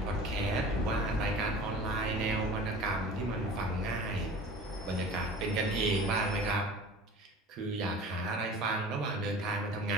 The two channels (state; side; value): normal; both; correlation 0.41